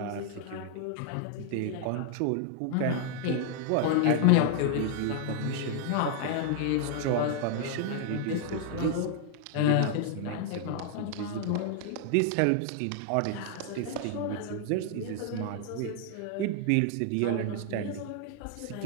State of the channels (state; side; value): different; both; correlation 0.00